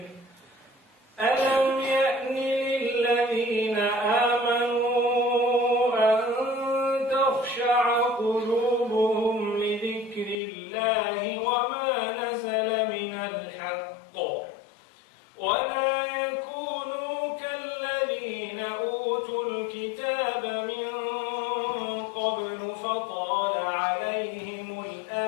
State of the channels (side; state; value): right; drops out; at 10.4 s